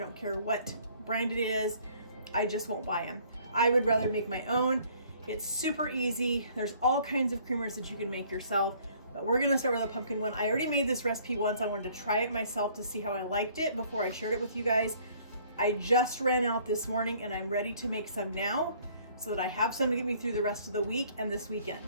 care what brand it is. I just won't buy them. I would rather make my own. It's super easy. There's all kinds of creamers that you can make yourself, but we're gonna start with a pumpkin one. I already made this recipe once. I wanted to try it myself to see how I liked it before I shared it with you guys. I just ran out this morning and I'm ready to make some now so that I have some to get me through the rest of the week and this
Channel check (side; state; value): both; inverted; correlation -0.59